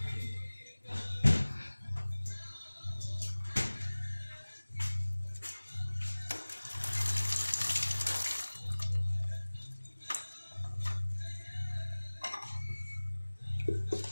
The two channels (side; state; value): both; inverted; correlation -1.00